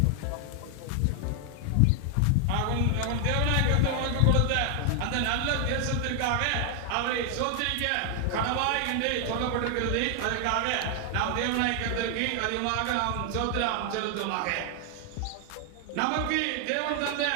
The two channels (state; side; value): different; both; correlation 0.00